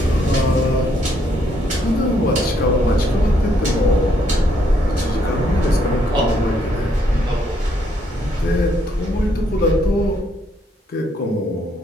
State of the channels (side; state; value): both; normal; correlation 0.72